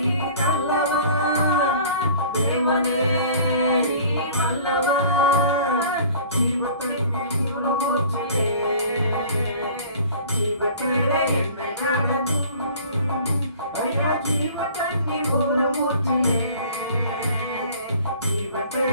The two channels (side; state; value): both; inverted; correlation -0.48